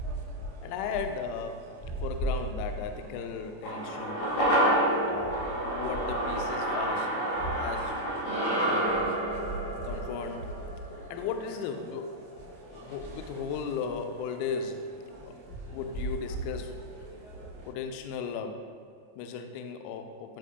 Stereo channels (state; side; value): late; right; 28 ms